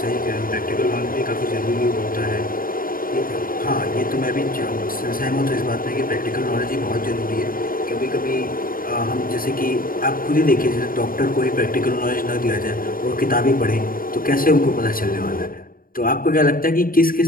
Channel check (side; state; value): right; late; 0.41 ms